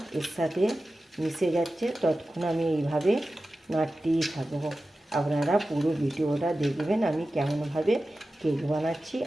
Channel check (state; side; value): normal; both; correlation 0.94